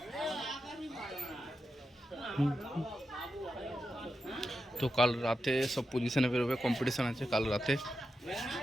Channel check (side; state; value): both; normal; correlation 0.89